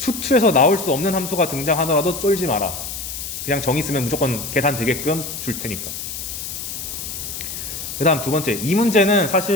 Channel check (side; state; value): left; noise; hiss, 7 dB below the sound